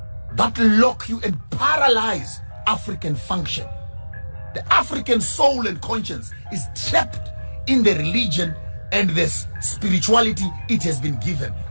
that lock you and paralyze African function. The African soul and conscience is trapped in the religion and this spirituality it has been given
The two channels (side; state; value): both; inverted; correlation -1.00